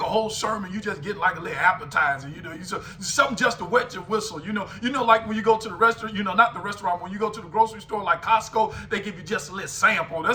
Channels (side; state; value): both; identical; correlation 1.00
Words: whole sermon, you just get like a little appetizer, something just to wet your whistle, like when you go to the restaurant, not the restaurant, when you go to the grocery store like Costco, they give you just a little sample.